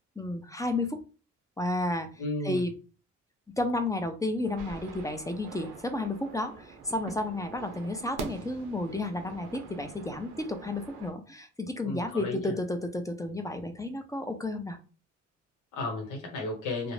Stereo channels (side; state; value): both; normal; correlation 0.55